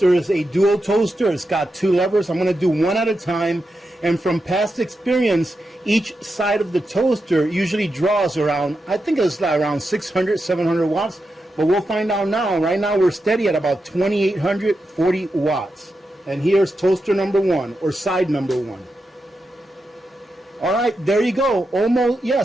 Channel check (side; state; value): both; normal; correlation 0.88